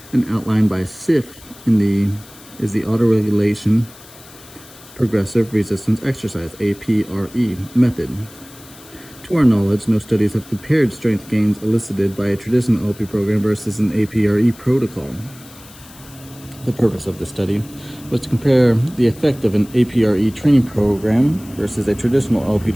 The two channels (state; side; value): noise; left; hiss, 21 dB below the sound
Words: and outlined by SIF is the autoregulation progressive resistance exercise (APRE) method. To our knowledge, no studies have compared strength gains elicited by a traditional LP program versus an APRE protocol. The purpose of this study was to compare the effect of an APRE training program versus a traditional LP